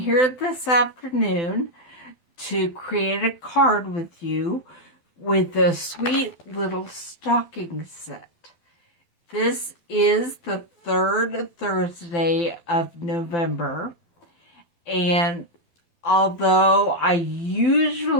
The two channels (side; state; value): right; late; 12 ms